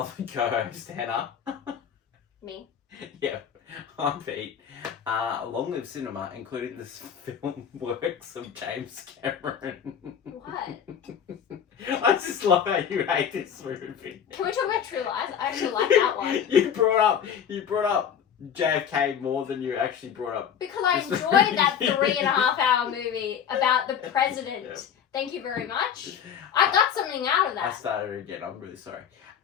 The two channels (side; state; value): right; quieter; 8.3 dB